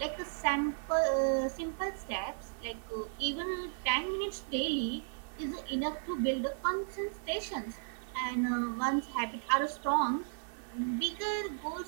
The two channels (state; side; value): silent; left; digital silence